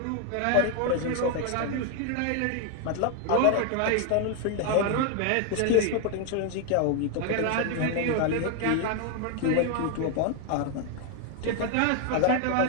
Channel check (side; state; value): both; different; correlation 0.00